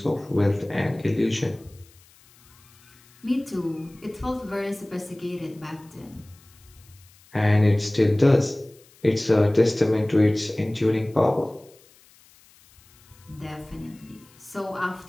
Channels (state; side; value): noise; left; hiss, 28 dB below the sound